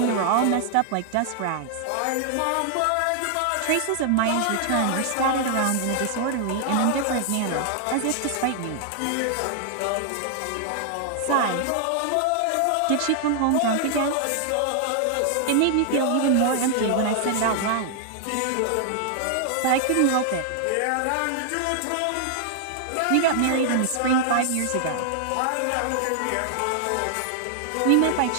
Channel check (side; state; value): both; different; correlation 0.00